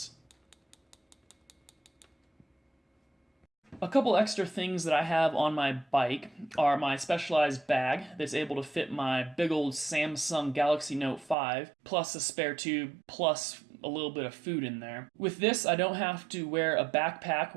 A couple extra things that I have on my bike are my specialized bag that's able to fit my big old Samsung Galaxy Note 5, plus a spare tube, plus a little bit of food in there. With this, I don't have to wear a backpack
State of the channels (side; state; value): left; drops out; at 11.4 s